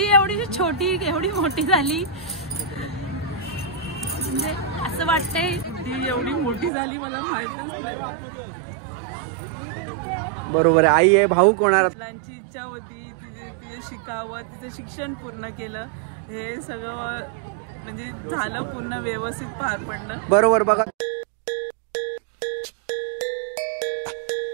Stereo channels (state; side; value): drops out; left; at 6.7 s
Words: एवढी छोटी एवढी मोठी झाली म्हणजे असं वाटतंय ती एवढी मोठी झाली मला माहितच नाही। बरोबर आहे आई आहे भाऊ कोणाला मुलांची इच्छा होती तिचे शिकावं तिचं शिक्षण पूर्ण केलं हे सगळं म्हणजे झालं पूर्ण व्यवस्थित पार पडलं। बरोबर बघा